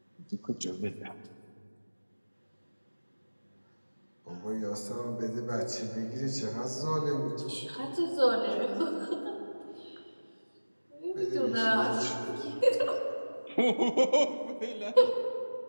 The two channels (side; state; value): both; inverted; correlation -1.00